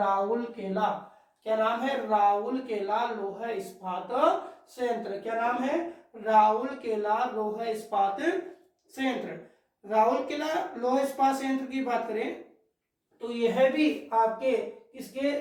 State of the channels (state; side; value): identical; both; correlation 1.00